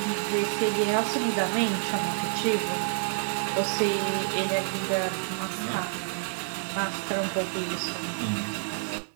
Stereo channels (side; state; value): left; silent; digital silence